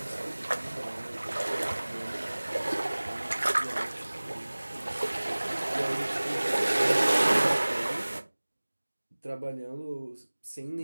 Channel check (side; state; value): both; inverted; correlation -1.00